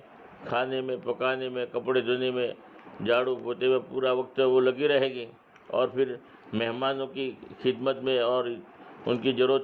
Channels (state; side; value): identical; both; correlation 1.00